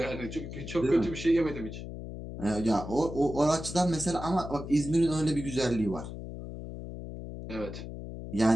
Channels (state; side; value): noise; left; hum, 9 dB below the sound